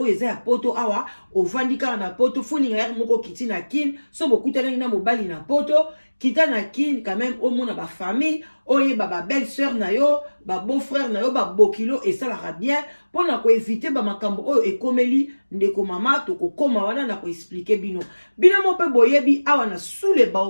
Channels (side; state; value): both; inverted; correlation -1.00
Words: eza ya poto awa ovandika na poto funinga ya moko kiti na kin so bokutana na mobali na poto kita na kin quand même au mona ba famille oye ba belle sœur na yo ba beau frère na yo ba bokilo et ça la bien pour na ko éviter ba makambo oyo ekomeli ndeko mama to ko koma wana na ko expliquer bino mo pe boyebi awa na sous les